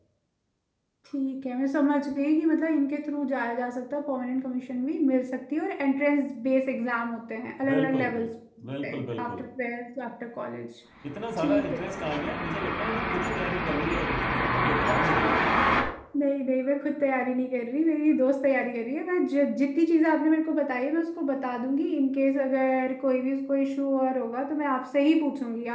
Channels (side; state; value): both; identical; correlation 1.00